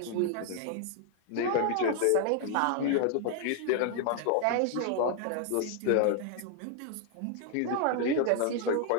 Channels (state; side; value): different; both; correlation 0.00